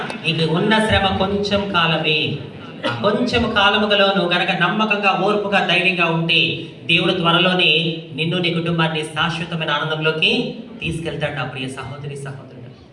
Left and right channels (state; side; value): identical; both; correlation 1.00